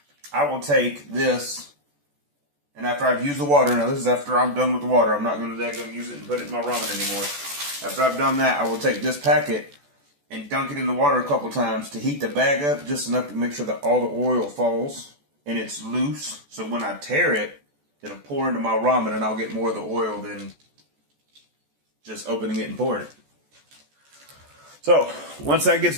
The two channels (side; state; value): left; late; 14 ms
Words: I will take this. And after I've used the water, now this is after I'm done with the water. I'm not going to use it and put it in my ramen anymore. After I've done that, I will take this packet and dunk it in the water a couple times to heat the bag up just enough to make sure that all the oil falls and it's loose. So when I tear it, it'll pour into my ramen and I'll get more of the oil than just opening it and pouring it. So once that gets